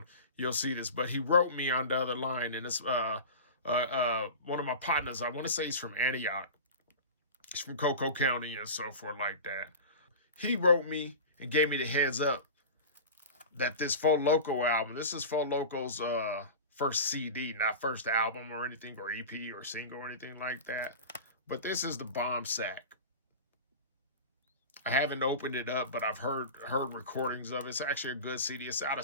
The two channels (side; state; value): both; inverted; correlation -0.31